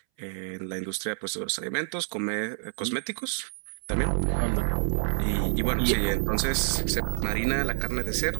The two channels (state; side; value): silent; left; 59 dB below the other